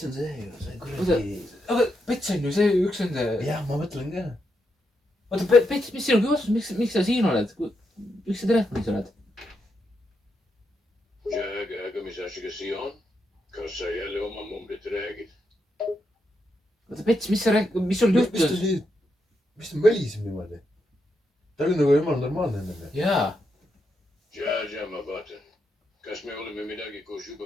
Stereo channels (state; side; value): normal; both; correlation 0.83